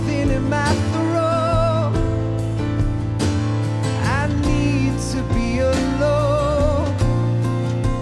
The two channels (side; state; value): both; identical; correlation 1.00